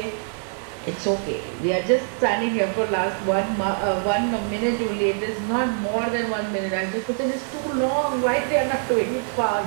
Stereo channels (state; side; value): silent; left; 63 dB below the other